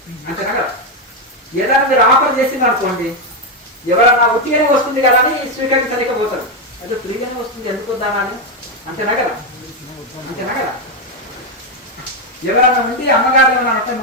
అంతేనా కదా. ఏదైనా మీరు ఆఫర్ చేసింది అనుకోండి, ఎవరన్నా ఉట్టిగానే వస్తుంది కదా అని స్వీకరించలేకపోతారు. అదే ఫ్రీగానే వస్తుంది ఎందుకు వద్దామని అంతేనా కదా? అంతేనా కదా? ఎవరన్నా ఉండి అమ్మగారు ఏమన్నా అంటే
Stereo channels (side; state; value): both; normal; correlation 0.06